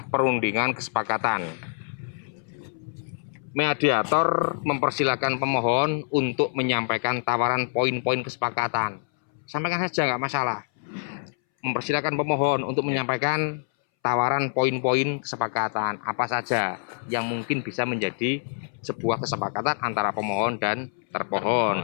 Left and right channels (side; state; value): right; silent; 61 dB below the other